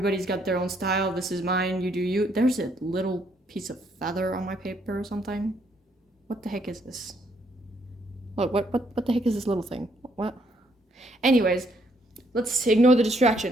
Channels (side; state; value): both; normal; correlation 0.71